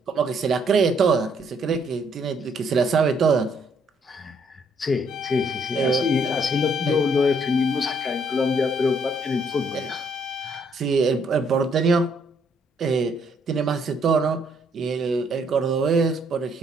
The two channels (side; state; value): both; normal; correlation 0.68